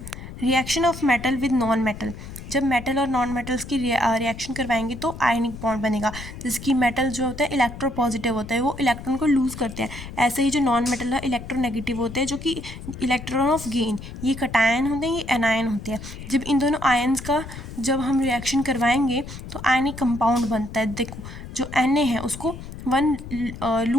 reaction of metal with non metal. जब मेटल और नॉन मेटल्स की रिएक्शन करवाएंगे तो आयनिक बॉन्ड बनेगा। जैसे कि मेटल जो होता है इलेक्ट्रोपॉजिटिव होता है, वो इलेक्ट्रॉन को लूज़ करते हैं। ऐसे ही जो नॉन मेटल है इलेक्ट्रोनेगेटिव होते हैं, जो कि इलेक्ट्रॉन ऑफ गेन। ये कटायन होते हैं, ये एनायन होते हैं। जब इन दोनों आयन्स का जब हम रिएक्शन करवाएंगे तो आयनिक कंपाउंड बनता है। देखो, जो Na है उसको 1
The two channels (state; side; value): noise; left; rumble, 12 dB below the sound